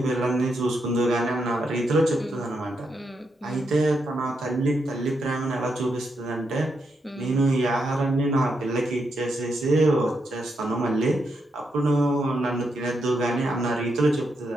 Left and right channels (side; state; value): both; normal; correlation 0.82